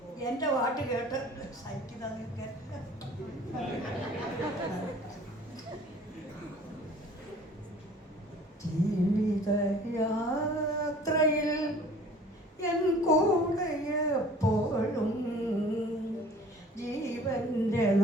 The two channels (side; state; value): both; normal; correlation 0.49